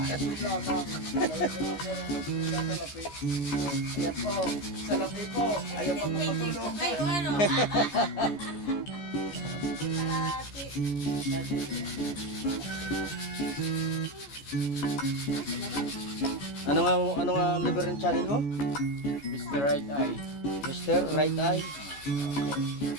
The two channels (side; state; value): right; late; 14 ms